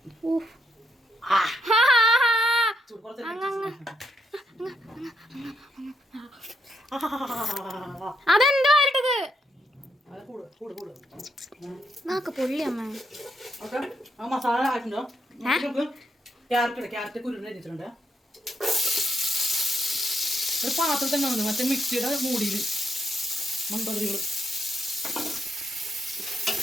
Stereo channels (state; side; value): normal; both; correlation 0.79